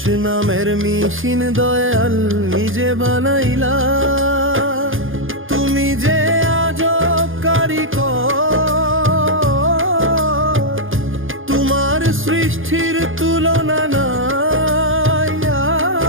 নামের মিশিন দয়াল নিজে বানাইলা। তুমি যে আজব কারিগর, তোমার সৃষ্টির তুলনা নাই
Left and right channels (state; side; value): late; left; 0.59 ms